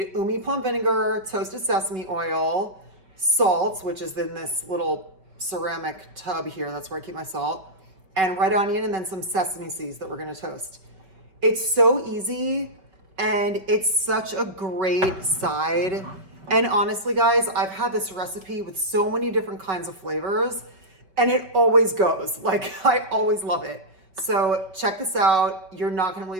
umi plum vinegar, toasted sesame oil, salt, which is in this little ceramic tub here, that's where I keep my salt, and red onion, and then some sesame seeds that we're gonna toast. It's so easy and it's such a great side. And honestly, guys, I've had this recipe with so many different kinds of flavors and it always goes. Like, I always love it. So check this out. You're not gonna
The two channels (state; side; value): late; left; 5.2 ms